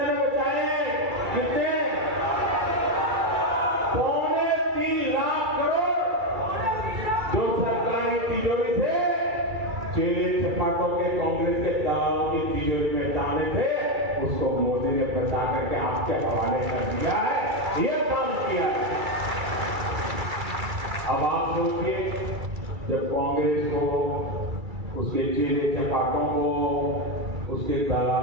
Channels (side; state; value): left; late; 2.3 ms